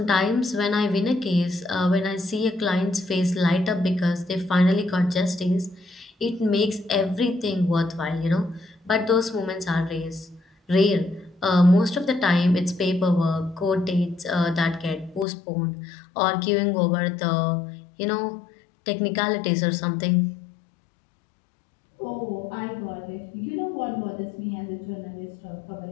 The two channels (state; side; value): drops out; right; at 15.2 s